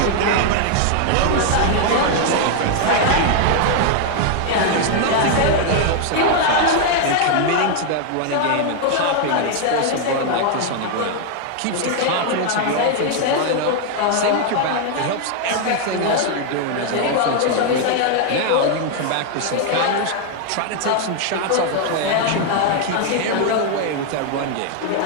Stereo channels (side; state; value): both; different; correlation 0.00